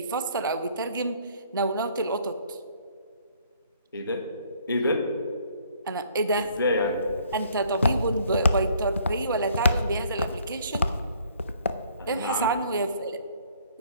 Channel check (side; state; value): both; inverted; correlation -0.61